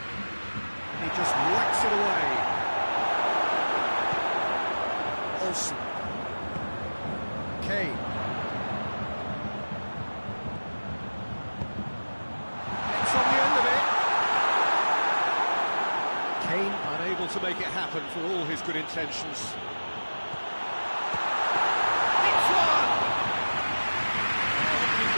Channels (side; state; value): both; inverted; correlation -1.00